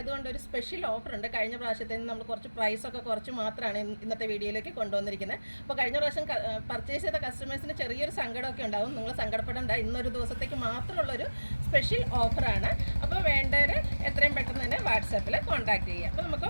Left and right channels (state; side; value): inverted; both; correlation -1.00